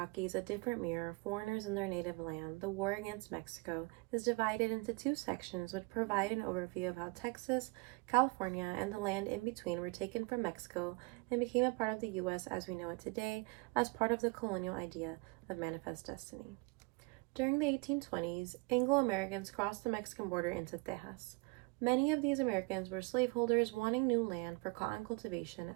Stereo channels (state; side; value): quieter; left; 27.5 dB